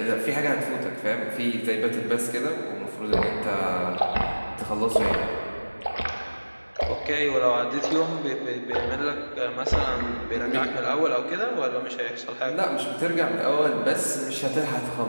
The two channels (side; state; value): both; inverted; correlation -1.00